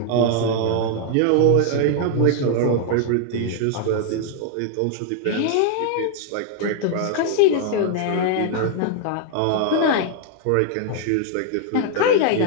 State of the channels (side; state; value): both; different; correlation 0.00